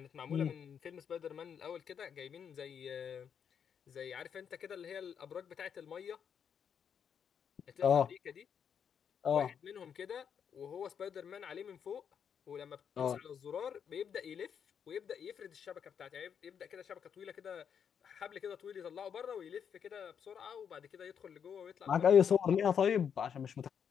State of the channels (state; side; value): quieter; right; 7.7 dB